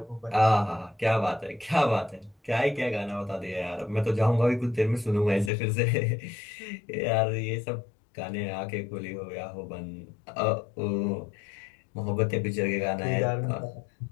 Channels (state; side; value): drops out; right; at 5.5 s